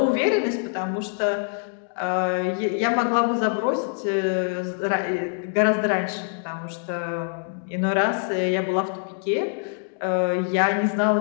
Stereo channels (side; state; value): right; silent; 59 dB below the other